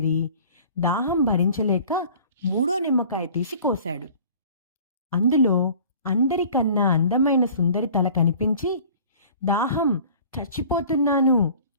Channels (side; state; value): both; inverted; correlation -0.47